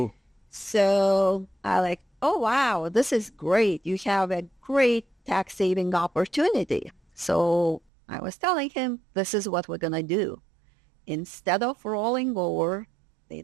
So I like, oh, wow, this is great. You have a great tax saving opportunity. So I was telling him, this is what we're going to do. Instead of rolling over the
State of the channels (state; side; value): drops out; left; at 7.8 s